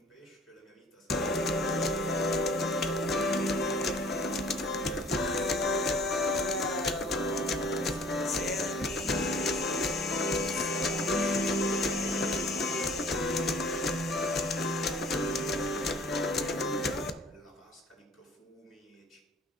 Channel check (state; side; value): normal; both; correlation 0.51